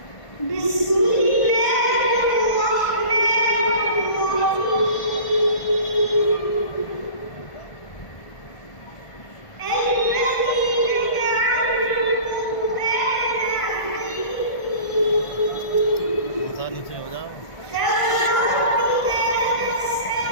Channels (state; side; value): late; right; 1.5 ms